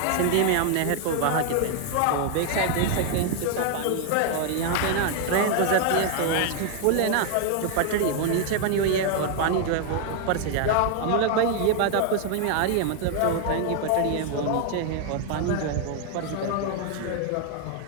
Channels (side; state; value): both; different; correlation 0.00